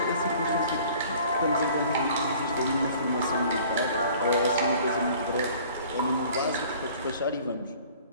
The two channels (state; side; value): inverted; both; correlation -0.50